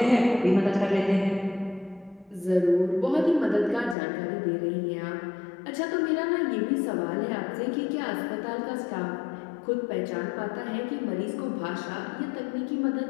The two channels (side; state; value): right; drops out; at 4.0 s